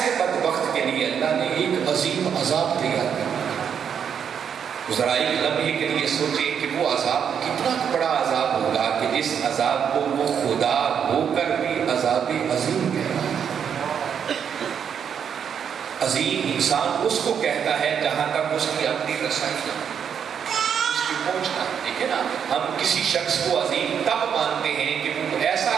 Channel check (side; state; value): left; quieter; 7.8 dB